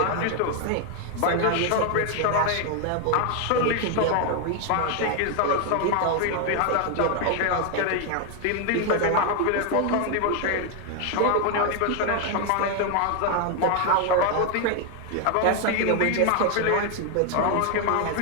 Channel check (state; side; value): different; both; correlation 0.01